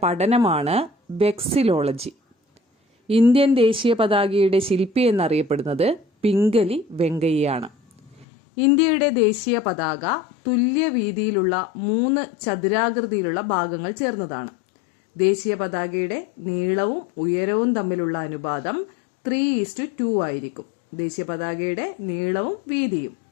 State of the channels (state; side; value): drops out; right; at 8.2 s